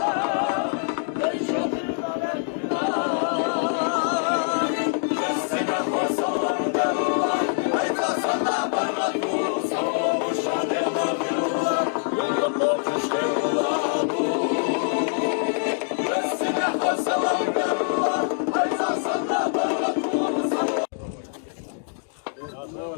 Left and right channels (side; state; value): right; silent; digital silence